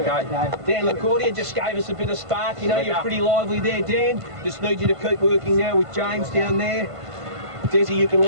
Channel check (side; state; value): left; late; 1.5 ms